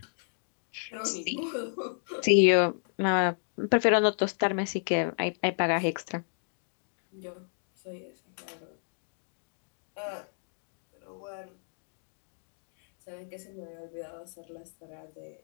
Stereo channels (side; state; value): right; silent; digital silence